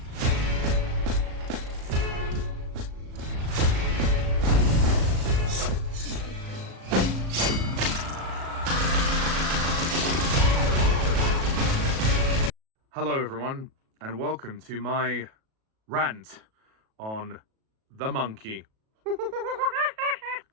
Hello everyone, and welcome to my rant on The Monkey.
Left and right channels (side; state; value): left; late; 37 ms